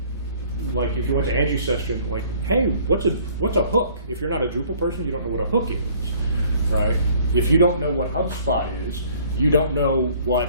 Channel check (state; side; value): inverted; both; correlation -0.56